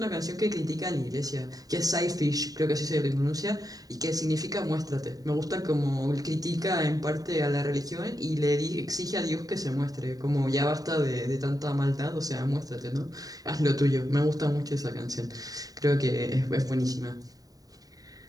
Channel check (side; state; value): left; late; 0.18 ms